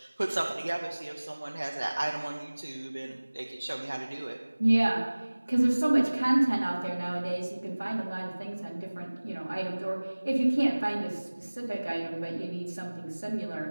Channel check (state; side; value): inverted; both; correlation -1.00